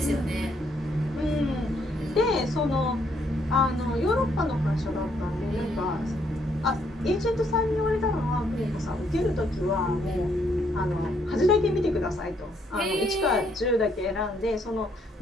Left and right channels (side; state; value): both; normal; correlation 0.71